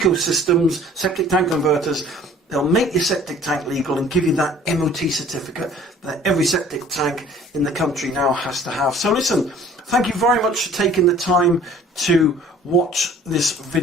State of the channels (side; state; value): both; normal; correlation 0.51